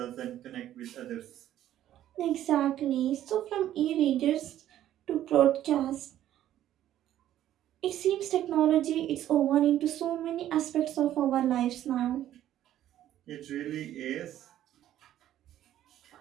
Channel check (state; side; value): quieter; left; 12.3 dB